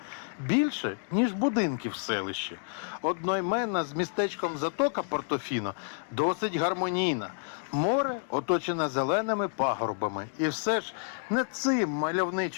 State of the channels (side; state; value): right; silent; digital silence